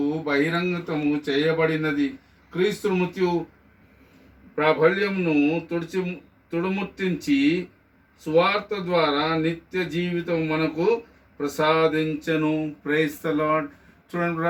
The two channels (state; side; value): identical; both; correlation 1.00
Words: బహిరంగతము చేయబడినది. క్రీస్తు మృత్యు ప్రాబల్యమును తుడుముట్టించి సువార్త ద్వారా నిత్య జీవితం మనకు ప్రసాదించను. Praise the lord.